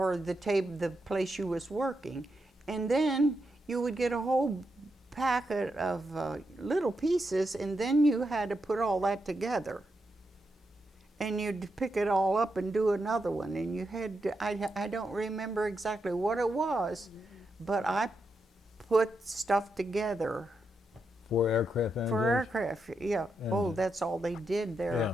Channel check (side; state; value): both; normal; correlation 0.84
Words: the place you was working, and then you would get a whole packet of little pieces, and then you had to put all that together, and you'd pick it all up and do another one, and you had to, I don't remember exactly what it was, but I put stuff together. For aircraft engines? For aircraft, yeah. Oh, Engines. that's all they did there.